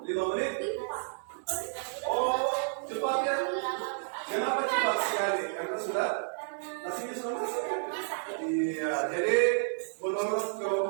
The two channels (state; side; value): silent; left; digital silence